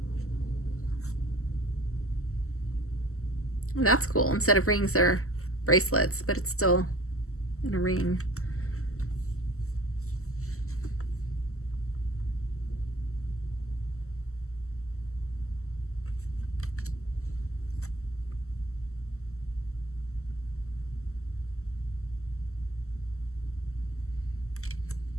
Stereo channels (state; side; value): late; right; 0.63 ms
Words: Well, that's cool. Instead of rings, they're bracelets, but it's still in a ring.